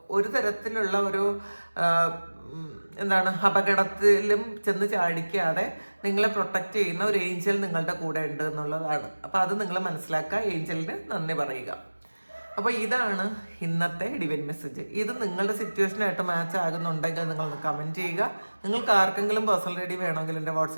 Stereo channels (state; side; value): inverted; both; correlation -1.00